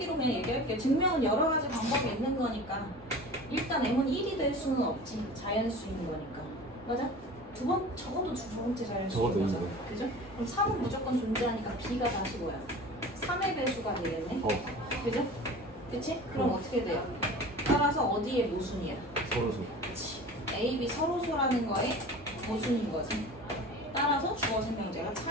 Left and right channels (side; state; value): both; normal; correlation 0.38